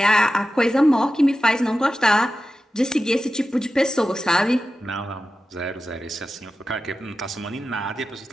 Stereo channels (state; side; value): normal; both; correlation 0.93